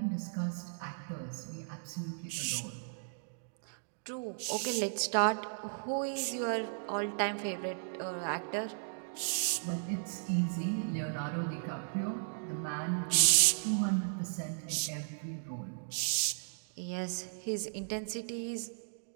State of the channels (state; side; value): silent; left; digital silence